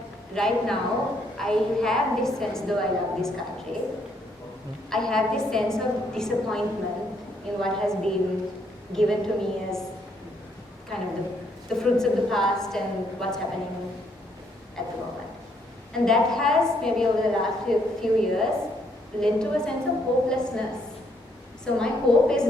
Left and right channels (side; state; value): both; normal; correlation 0.71